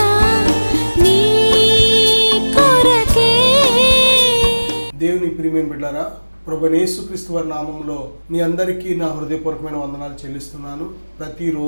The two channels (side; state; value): both; inverted; correlation -1.00